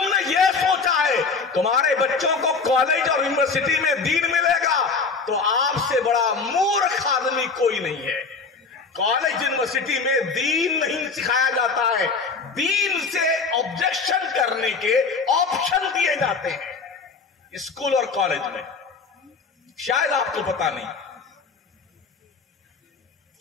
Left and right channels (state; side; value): quieter; right; 4.7 dB